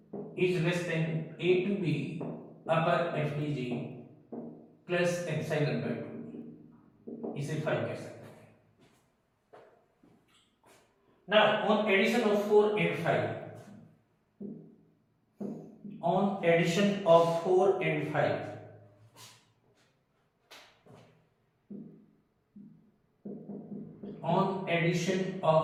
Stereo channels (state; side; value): identical; both; correlation 1.00